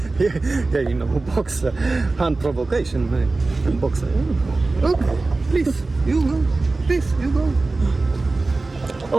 Yeah, you know, boxer, hand provocation, man. Boxer. Okay, please, you go. Please, you go.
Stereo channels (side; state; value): left; quieter; 3.4 dB